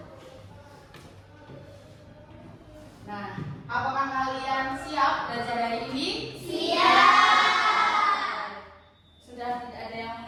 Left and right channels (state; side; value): identical; both; correlation 1.00